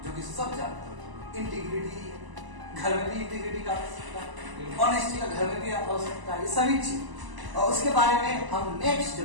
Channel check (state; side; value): late; left; 1.0 ms